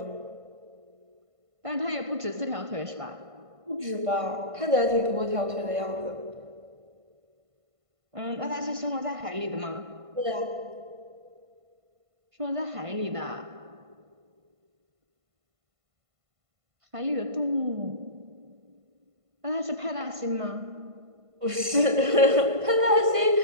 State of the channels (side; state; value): left; late; 1.5 ms